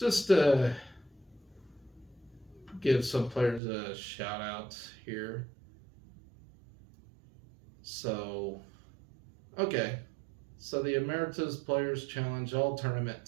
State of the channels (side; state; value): left; drops out; at 3.6 s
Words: to give some players a shout out here. So, okay. So the Emeritus Players Challenge All Tournament